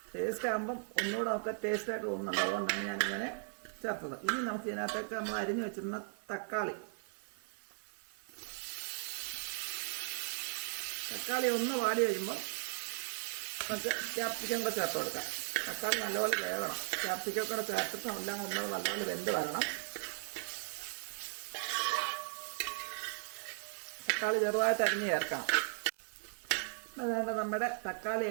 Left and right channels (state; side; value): silent; left; 53 dB below the other